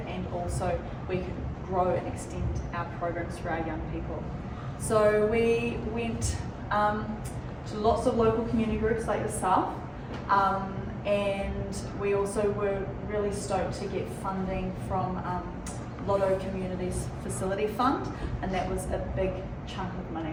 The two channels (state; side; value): identical; both; correlation 1.00